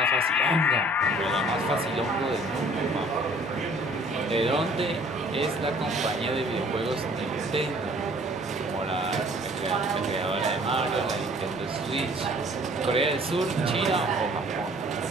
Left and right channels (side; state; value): both; normal; correlation 0.54